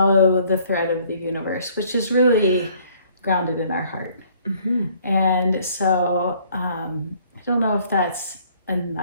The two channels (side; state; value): both; inverted; correlation -0.60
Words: the thread of the universe, which is really grounded in our heart. And so I don't know if that's a